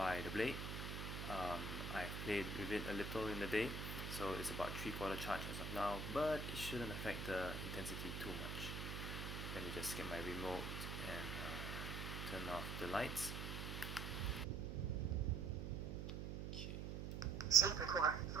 the blade. I've played with it a little in the day, so it's about 3/4 charge as of now, but it shouldn't affect the intensity too much. Let me just get my remote and turn off the lights. Okay. Saber core,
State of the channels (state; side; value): noise; right; hum, 4 dB below the sound